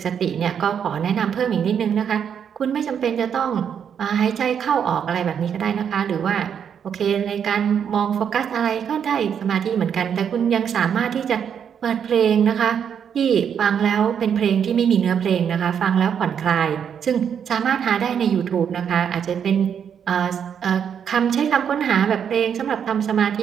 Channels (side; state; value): left; quieter; 8.0 dB